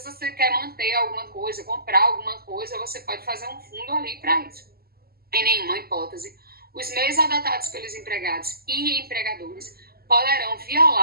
você quer manter alguma coisa, comprar alguma coisa, você pode fazer um fundo ali para isso. Em nenhuma hipótese, os meios adotados pelos empregados e empregadores poderão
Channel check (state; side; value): late; left; 0.45 ms